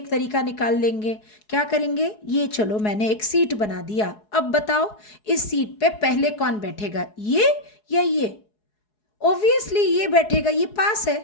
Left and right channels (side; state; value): right; late; 4.7 ms